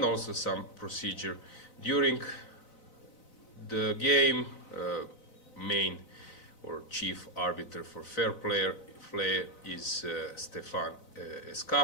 also some procedure during the game. Main or chief arbiter for fair play is Stefan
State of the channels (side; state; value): right; late; 4.0 ms